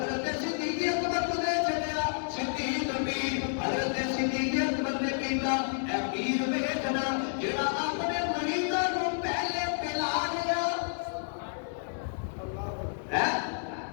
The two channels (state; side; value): silent; right; digital silence